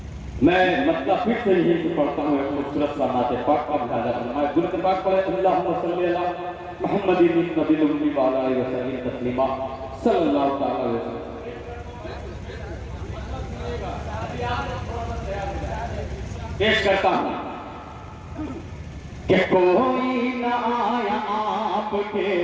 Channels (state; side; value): identical; both; correlation 1.00